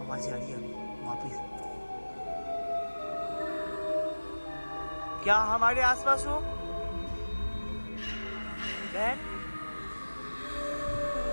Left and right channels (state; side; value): inverted; both; correlation -1.00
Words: आवाज आ रही है अभी वापिस। क्या हमारे आसपास हो बहन?